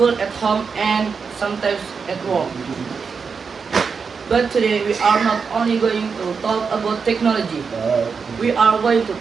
at home, and sometimes at work. But today we are not only going to talk about technology. We are going to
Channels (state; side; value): quieter; left; 5.5 dB